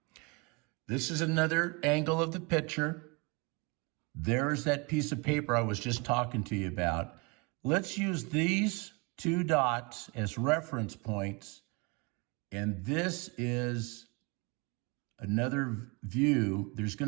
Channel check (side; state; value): left; quieter; 29.3 dB